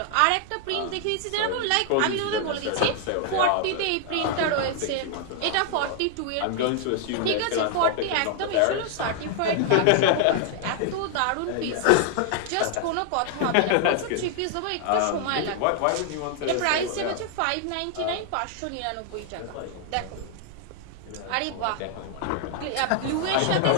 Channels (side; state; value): both; different; correlation 0.00